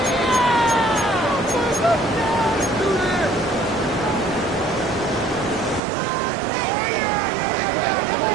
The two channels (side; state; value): left; drops out; at 5.8 s